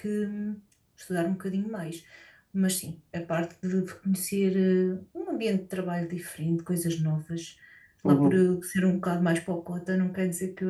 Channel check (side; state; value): both; identical; correlation 1.00